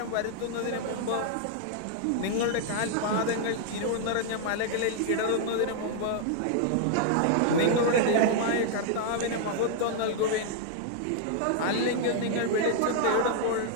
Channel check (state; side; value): different; both; correlation -0.01